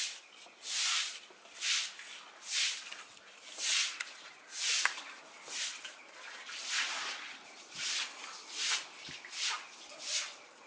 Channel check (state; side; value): identical; both; correlation 1.00